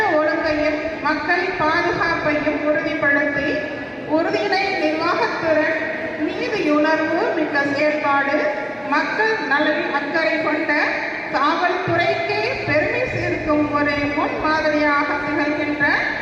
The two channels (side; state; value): both; identical; correlation 1.00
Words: ஒழுங்கையும் மக்கள் பாதுகாப்பையும் உறுதிப்படுத்தி உறுதியினை நிர்வாகத்திறன், நீதியுணர்வு மிக்க செயற்பாடு, மக்கள் நலனில் அக்கறை கொண்ட காவல்துறைக்கே பெருமை சேர்க்கும் ஒரு முன்மாதிரியாக திகழ்கின்ற